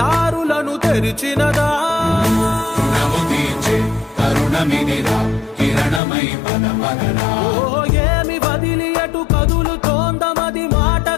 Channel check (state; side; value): drops out; right; at 6.0 s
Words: తెరిచినదా రుణము తీర్చే కరుణమిదిరా కిరణమై పద పదరా ఓ ఏమి వదిలి అటు కదులుతోందమది